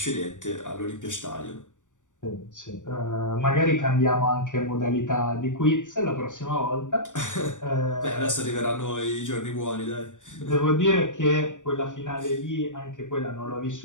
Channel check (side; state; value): right; late; 0.87 ms